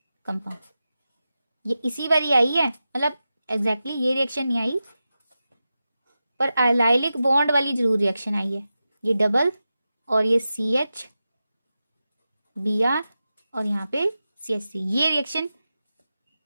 कंपाउंड। ये इसी बारी आई है, मतलब एग्जैक्टली ये रिएक्शन नहीं आई पर अलाइलिक बॉन्ड वाली जरूर रिएक्शन आई है, ये डबल और ये CH Br और यहाँ पे CH3, ये रिएक्शन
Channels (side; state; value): both; inverted; correlation -0.92